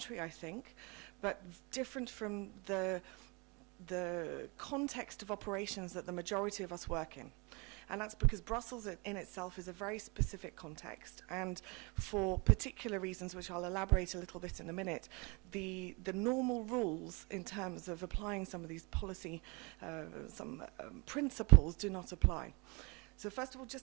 I think, but different from the context of operations that the majority of us work in. And that's because Brussels in itself is a very specific context, and for particular reasons, which I'll elaborate a little bit in a minute, the normal rules in terms of applying some of these policy, principles do not apply. So first of all,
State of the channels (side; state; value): left; quieter; 29.3 dB